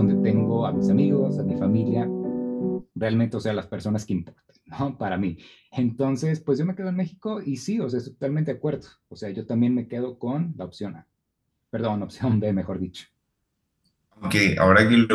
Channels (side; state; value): both; identical; correlation 1.00